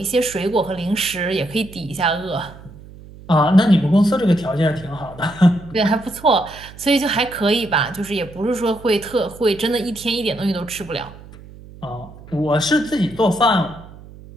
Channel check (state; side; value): noise; right; hum, 19 dB below the sound